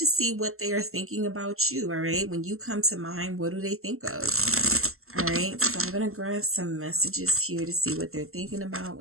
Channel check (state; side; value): late; left; 0.62 ms